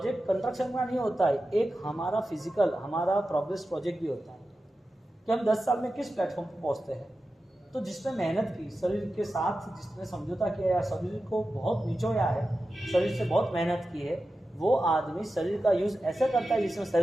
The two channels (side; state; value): both; normal; correlation 0.93